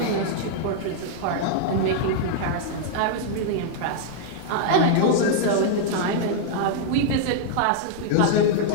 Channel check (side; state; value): both; different; correlation -0.01